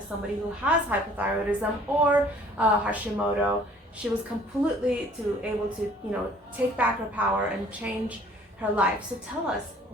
somebody who has hypothyroidism or Hashimoto. She was completely able to, take back her power and change her life. So tell us,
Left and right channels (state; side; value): normal; both; correlation 0.55